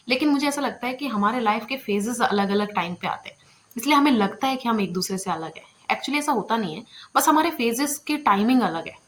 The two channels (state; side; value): identical; both; correlation 1.00